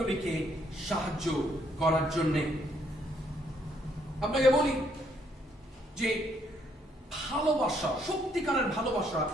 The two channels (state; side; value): normal; both; correlation 0.70